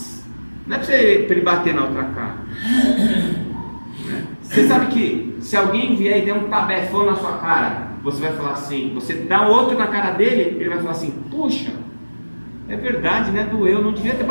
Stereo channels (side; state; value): both; inverted; correlation -1.00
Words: Não é para ele bater na outra cara. Você sabe que se alguém vier e der um tabefão na sua cara, você vai falar assim, você dá outro na cara dele, ele vai falar assim, puxa, é verdade, né? Doeu, não devia ter